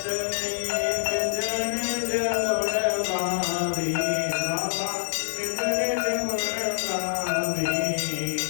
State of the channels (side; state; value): right; silent; digital silence